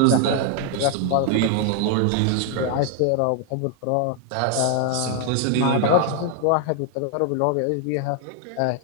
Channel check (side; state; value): both; different; correlation 0.00